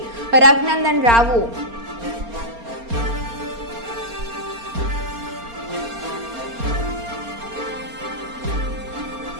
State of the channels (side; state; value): left; late; 4.3 ms